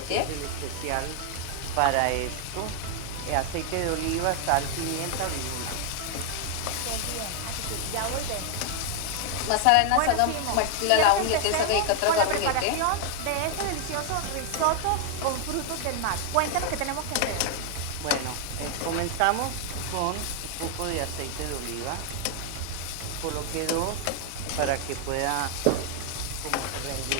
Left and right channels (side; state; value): both; different; correlation 0.00